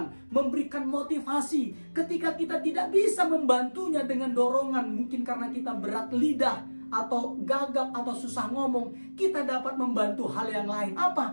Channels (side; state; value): both; inverted; correlation -1.00